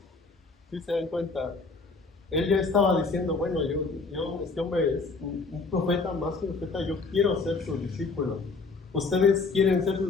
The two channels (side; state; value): right; quieter; 4.1 dB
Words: ¿Sí se dan cuenta? Él ya estaba diciendo, bueno, este hombre es un profeta, más que un profeta, yo quiero ser su discípulo. ¿Ustedes quieren ser